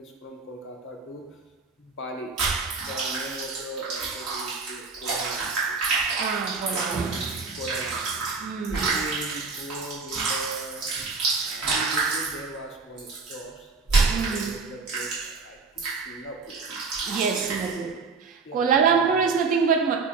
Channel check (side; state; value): left; quieter; 4.5 dB